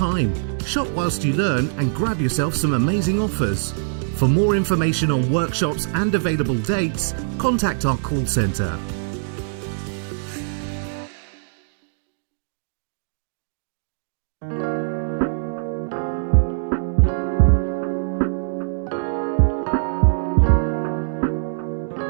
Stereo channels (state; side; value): silent; left; digital silence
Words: Shop whilst you learn and grab yourself some amazing offers. For more information on workshops and available dates, contact our call centre.